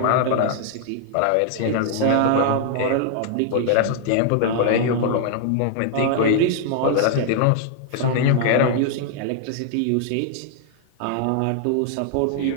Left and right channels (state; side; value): different; both; correlation -0.01